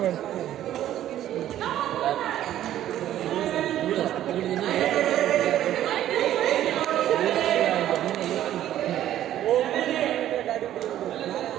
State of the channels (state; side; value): quieter; left; 12.3 dB